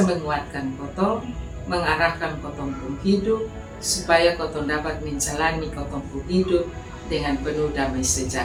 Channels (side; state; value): both; identical; correlation 1.00